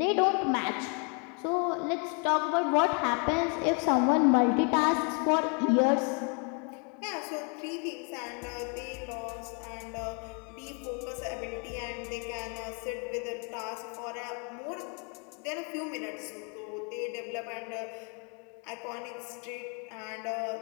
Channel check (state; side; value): quieter; right; 36.2 dB